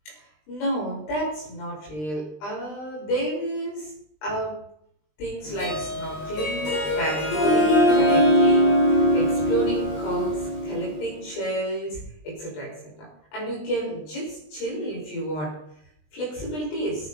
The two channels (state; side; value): late; right; 20 ms